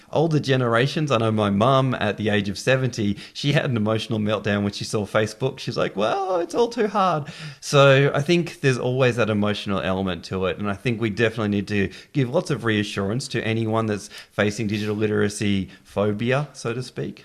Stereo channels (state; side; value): identical; both; correlation 1.00